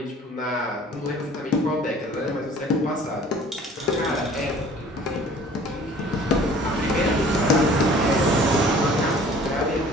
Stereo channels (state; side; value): normal; both; correlation 0.50